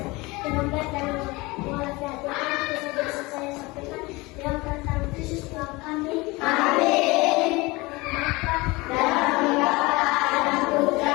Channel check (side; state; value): right; quieter; 23.2 dB